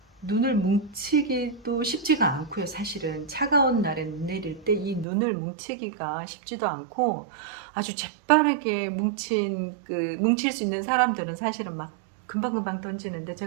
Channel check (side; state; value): left; drops out; at 5.1 s